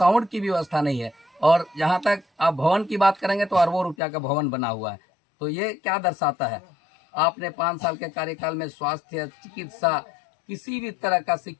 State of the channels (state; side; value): drops out; right; at 4.0 s